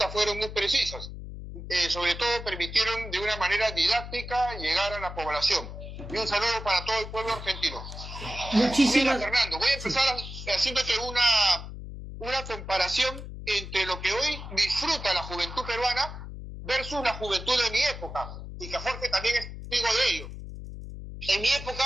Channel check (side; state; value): left; noise; hum, 10 dB below the sound